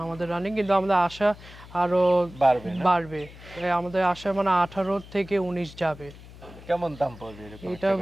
আমাদের রানিং, কিন্তু আমাদের আশা আরো বাড়বে না? বাড়বে। আমাদের আশা মানে 18 থেকে 19 যাবে। কেমন দাম পড়বে এরকম? এটা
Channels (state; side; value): noise; left; hum, 18 dB below the sound